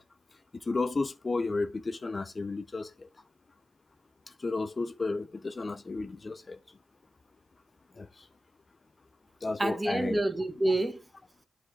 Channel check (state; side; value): normal; both; correlation 0.95